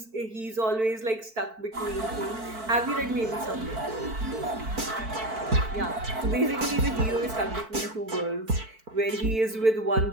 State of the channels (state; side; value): late; left; 4.5 ms